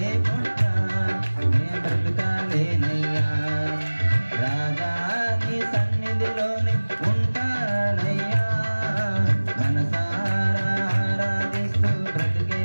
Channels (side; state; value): both; inverted; correlation -1.00